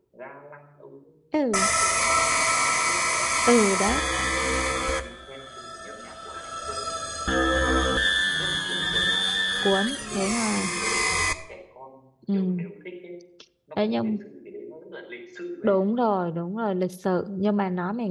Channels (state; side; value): identical; both; correlation 1.00